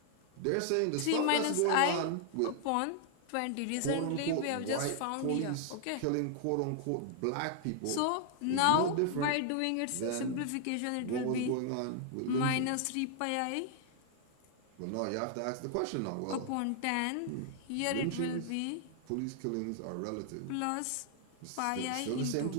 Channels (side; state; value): both; different; correlation 0.00